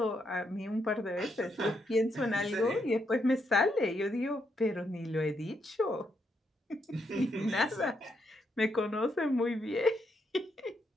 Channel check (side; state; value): both; normal; correlation 0.78